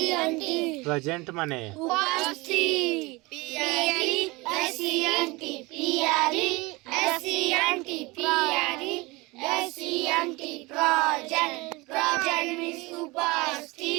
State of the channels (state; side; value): quieter; left; 23.7 dB